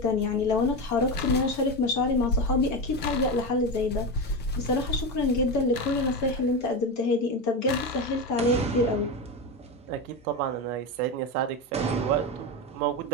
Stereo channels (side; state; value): both; normal; correlation 0.18